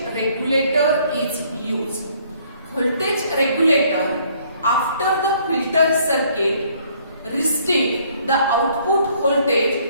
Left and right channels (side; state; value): both; inverted; correlation -0.63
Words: regulator is used. Voltage regulator after the filter circuit restricts the output